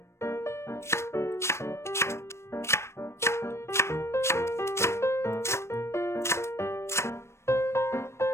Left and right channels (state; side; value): late; right; 0.13 ms